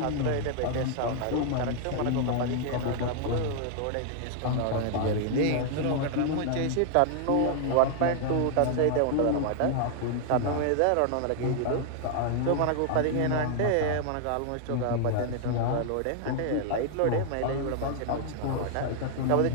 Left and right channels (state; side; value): different; both; correlation 0.00